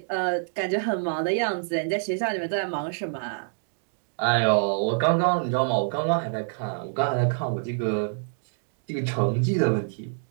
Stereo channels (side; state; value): left; silent; digital silence